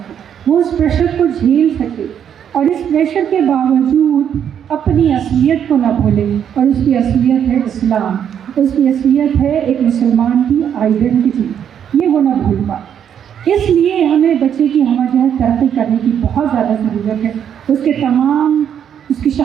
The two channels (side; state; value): left; quieter; 8.8 dB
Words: وہ اس پریشر کو جھیل سکے، اور اس پریشر کے باوجود اپنی اصلیت کو نہ بھولے. اور اس کی اصلیت ہے اسلام، اس کی اصلیت ہے ایک مسلمان کی آئیڈینٹی، یہ وہ نہ بھول پائے. اس لیے ہمیں بچے کی ہمہ جہت ترقی کرنے کی بہت زیادہ ضرورت ہے. اس کی